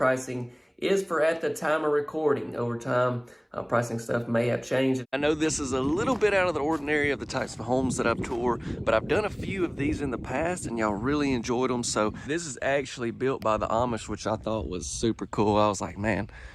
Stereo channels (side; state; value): both; identical; correlation 1.00